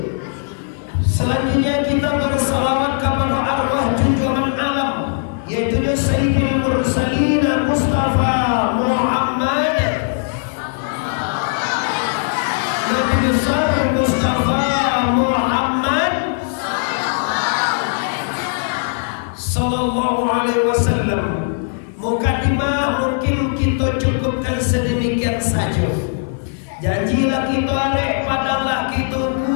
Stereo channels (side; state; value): right; silent; digital silence